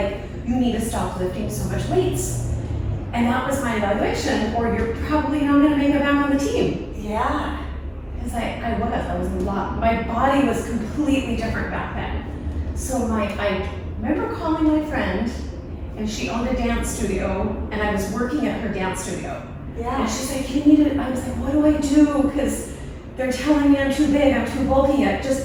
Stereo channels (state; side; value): identical; both; correlation 1.00